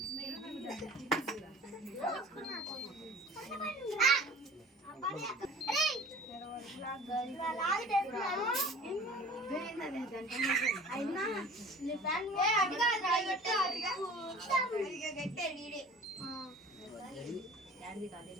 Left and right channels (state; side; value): normal; both; correlation 0.44